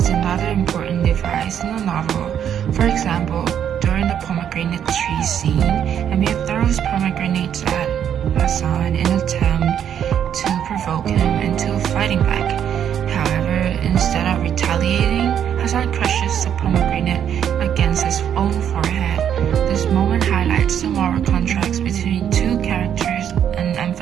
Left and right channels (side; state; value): left; quieter; 9.2 dB